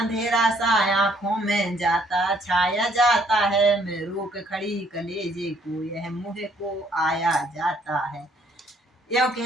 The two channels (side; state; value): both; normal; correlation 0.65